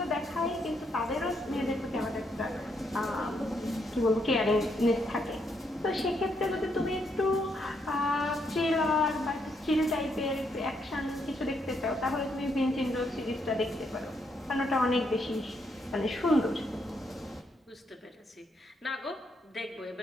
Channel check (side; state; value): both; normal; correlation 0.76